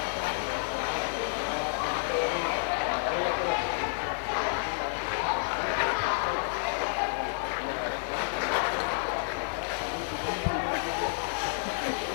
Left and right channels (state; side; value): silent; right; digital silence